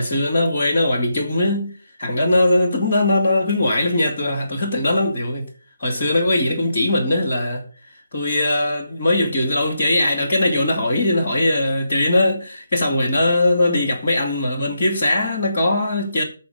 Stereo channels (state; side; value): inverted; both; correlation -0.81